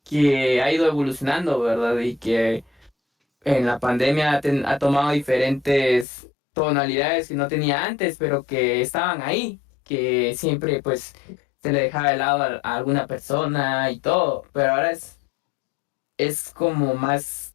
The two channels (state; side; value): drops out; right; at 6.1 s